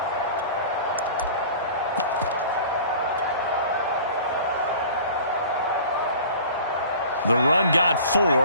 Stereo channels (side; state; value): both; inverted; correlation -0.43